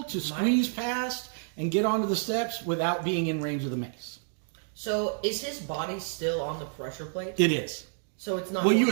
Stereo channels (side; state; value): left; silent; digital silence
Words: to squeeze past and get onto the steps without being in range of the mace. So is his body still on the pressure plate? It is. So it's not. Well, you